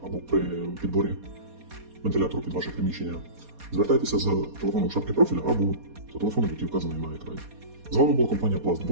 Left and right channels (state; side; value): late; left; 4.2 ms